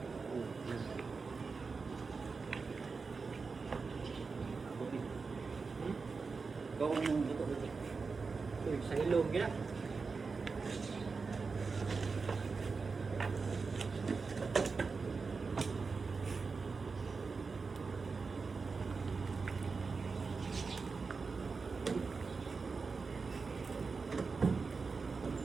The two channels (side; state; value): left; quieter; 4.6 dB